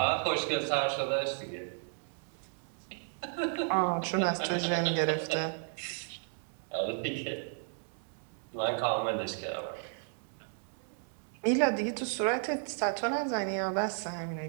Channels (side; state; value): left; silent; 55 dB below the other